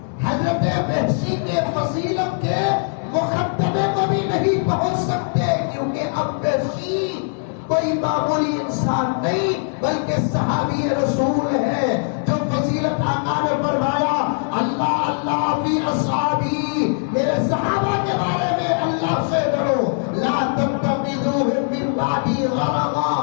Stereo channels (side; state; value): right; silent; 65 dB below the other